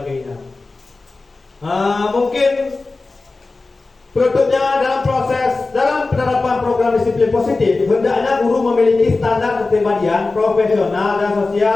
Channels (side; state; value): right; quieter; 3.6 dB